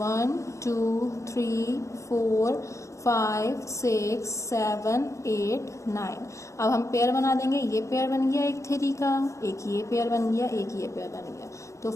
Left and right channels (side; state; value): right; late; 0.15 ms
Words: 2 3 4 5 6 7 8 9। अब हम पेयर बना देंगे, ये पेयर बन गया एक 3 का, एक ये पेयर बन गया, एक ये पेयर बन गया। तो